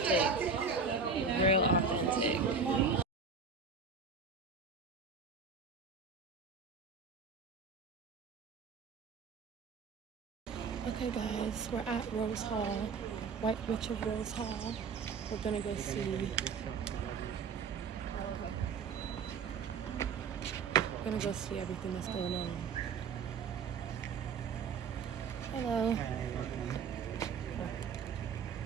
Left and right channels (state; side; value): quieter; left; 5.1 dB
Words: Real authentic. Okay guys, we're at Rose Hall, White Witch of Rose Hall. We're gonna go see. We're gonna go see everything that's going on. Hello.